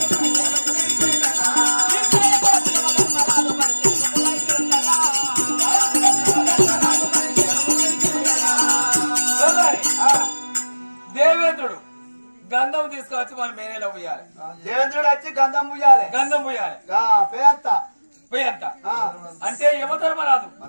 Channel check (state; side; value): inverted; both; correlation -1.00